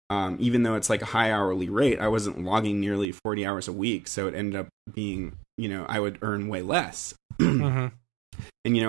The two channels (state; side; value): drops out; left; at 3.1 s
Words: Even though it's like a high hourly rate, I wasn't logging nearly 40 hours a week, so it ended up being, I would earn way less. And